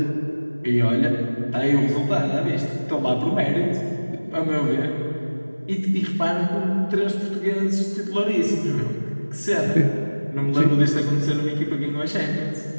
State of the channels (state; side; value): inverted; both; correlation -1.00